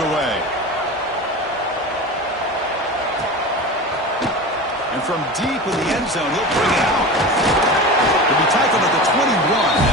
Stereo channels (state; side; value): normal; both; correlation 0.30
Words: away. And from deep in the end zone, he'll bring it out. He'll be tackled at the 21.